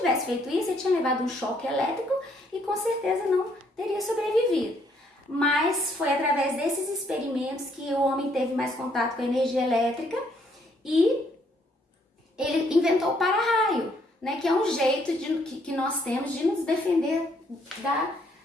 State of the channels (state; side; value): normal; both; correlation 0.69